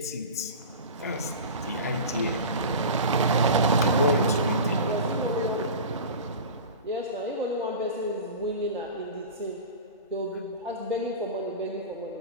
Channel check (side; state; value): both; inverted; correlation -0.31